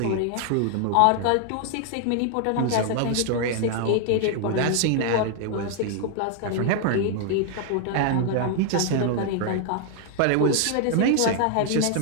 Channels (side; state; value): both; different; correlation 0.00